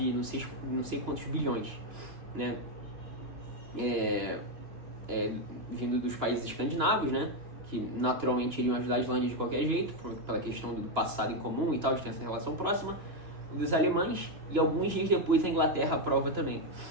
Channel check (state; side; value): late; left; 2.9 ms